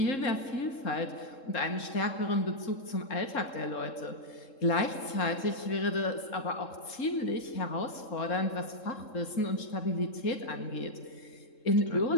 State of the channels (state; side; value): late; right; 3.7 ms